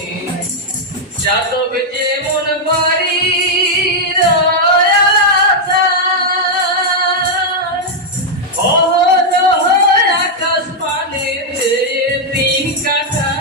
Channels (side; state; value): both; normal; correlation -0.02